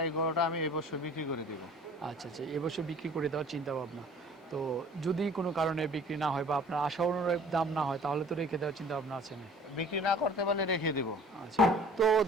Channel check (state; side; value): normal; both; correlation 0.49